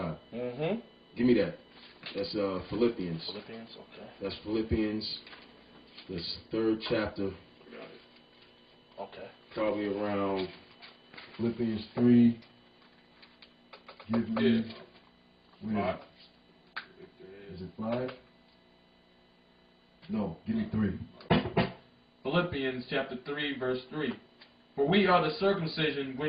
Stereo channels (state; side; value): identical; both; correlation 1.00